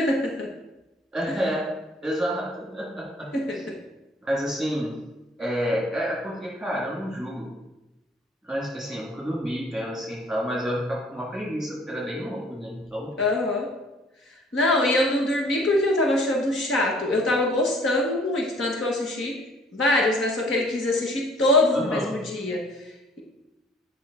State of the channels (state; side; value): normal; both; correlation 0.56